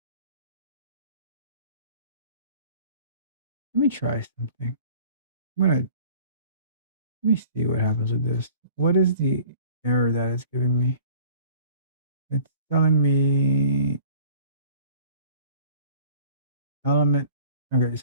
Let me try something. I'm gonna let me see what happens with this. What is the error that it's giving me? It's telling me element. Okay,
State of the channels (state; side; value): inverted; both; correlation -0.48